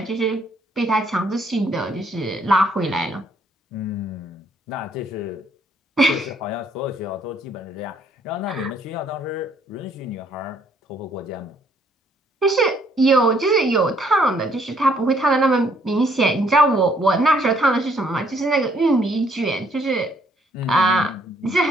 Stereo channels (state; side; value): normal; both; correlation 0.66